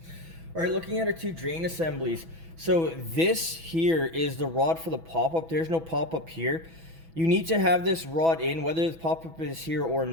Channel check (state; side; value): late; left; 6.1 ms